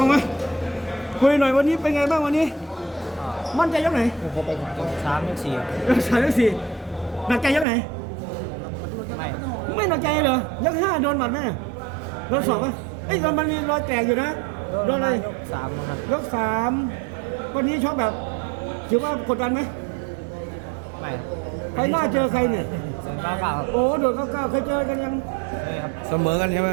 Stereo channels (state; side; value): drops out; left; at 7.7 s